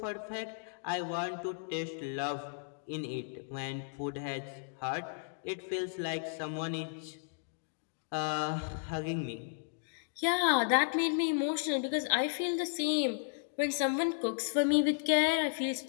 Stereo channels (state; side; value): silent; right; digital silence